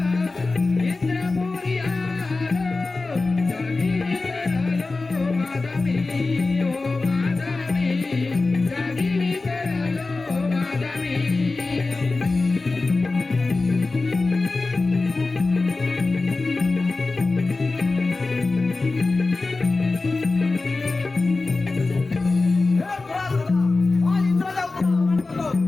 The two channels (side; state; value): right; quieter; 3.6 dB